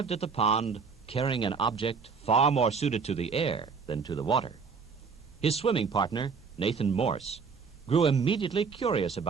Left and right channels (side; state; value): left; quieter; 5.4 dB